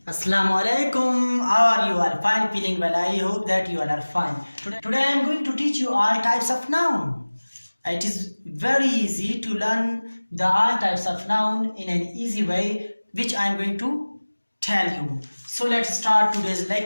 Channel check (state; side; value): inverted; both; correlation -1.00